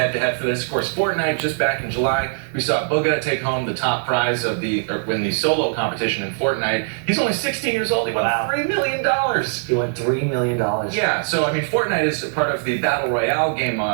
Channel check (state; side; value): silent; left; 65 dB below the other